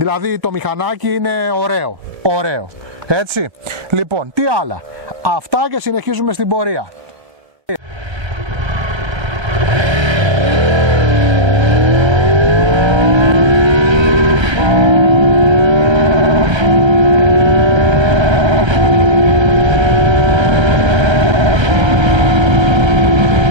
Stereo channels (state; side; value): late; left; 1.3 ms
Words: το μηχανάκι είναι ωραίο. Έτσι, λοιπόν, τι άλλα. Αυτά και συνεχίζουμε στην πορεία.